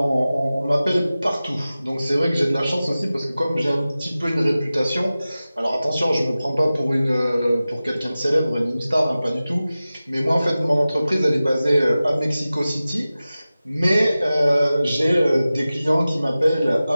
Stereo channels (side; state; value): both; inverted; correlation -0.96